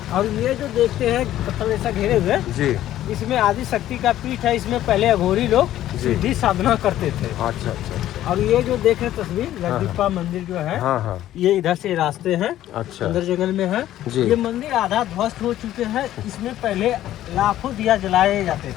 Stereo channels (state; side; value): quieter; right; 13.1 dB